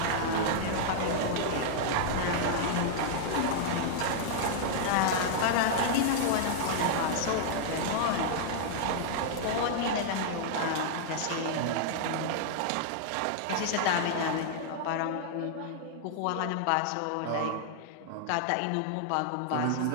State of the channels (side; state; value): both; different; correlation -0.01